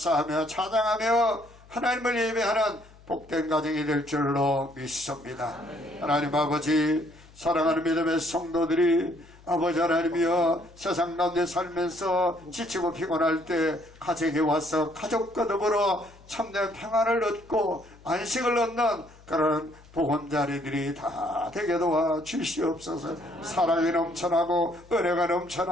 찬양하며 하나님을 예배하는 복된 가정이 될 줄로 믿습니다. 하나님 아버지 사랑하는 믿음의 성도들이 아버지 하나님이여 세상 가운데 살면서 지치고 피곤할 때 가정에 와서 가족과 더불어 참된 평안을 얻고 안식을 얻는 그런 보건자리들이 다 다 되게 도와 주시옵소서. 사랑이 넘쳐나고 은혜가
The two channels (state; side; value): noise; left; hum, 24 dB below the sound